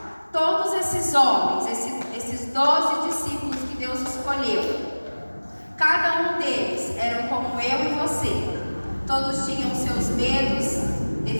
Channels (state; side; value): inverted; both; correlation -1.00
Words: Todos esses homens, esses 12 discípulos que Deus escolheu, cada um deles eram como eu e você. Todos tinham seus medos,